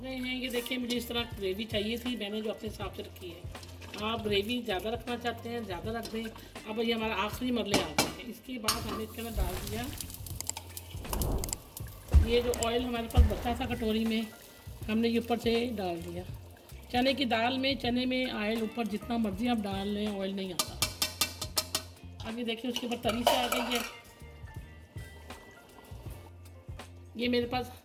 हैं। ये देखिए मुझे इस तरह ग्रेवी चाहिए थी, मैंने जो अपने हिसाब से रखी है। आप ग्रेवी ज़्यादा रखना चाहते हैं ज़्यादा रख दें। अब ये हमारा आखिरी मरले आ गए हैं। इसके बाद हमने इसके अंदर डाल दिया ये जो ऑयल हमारे पास बचा था कटोरी में, हमने ये ऊपर से डाल दिया। चने की दाल में, चने में ऑयल ऊपर जितना मर्जी आप डाल लें, ऑयल नहीं आता। अब ये देखिए उसके ऊपर तरी से आ गई है। ये मेरे पास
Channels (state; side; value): identical; both; correlation 1.00